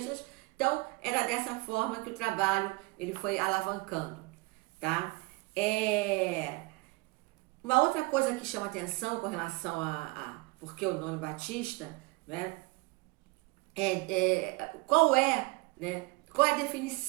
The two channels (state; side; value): quieter; left; 24.6 dB